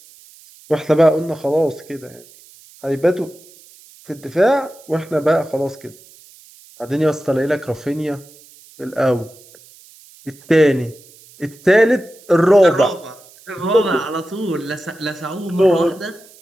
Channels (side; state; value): right; noise; hiss, 24 dB below the sound